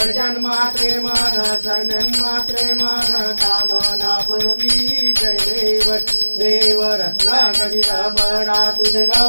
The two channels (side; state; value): both; inverted; correlation -1.00